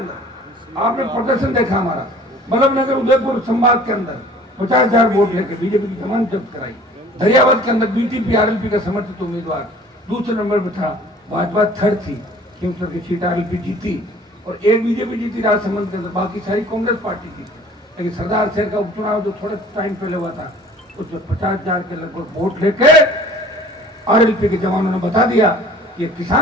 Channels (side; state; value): both; normal; correlation 0.49